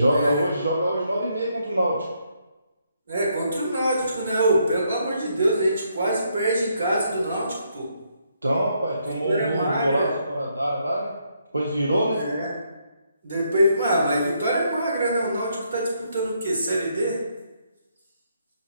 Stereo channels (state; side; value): inverted; both; correlation -0.74